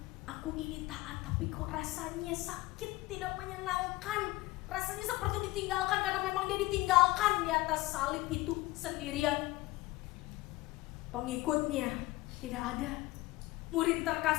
aku ini taat tapi kok rasanya sakit, tidak menyenangkan. Rasanya seperti ditinggalkan," karena memang dia ditinggalkan di atas salib itu sendirian. Pengikutnya tidak ada. Murid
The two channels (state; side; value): quieter; right; 19.5 dB